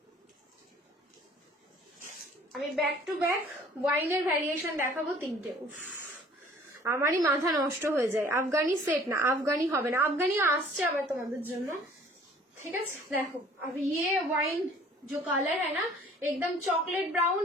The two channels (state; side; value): normal; both; correlation 0.53